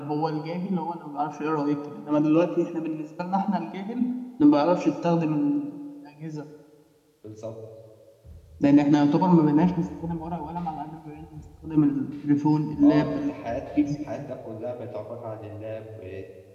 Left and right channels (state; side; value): identical; both; correlation 1.00